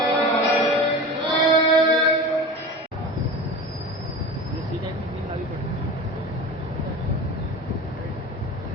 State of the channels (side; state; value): both; normal; correlation 0.32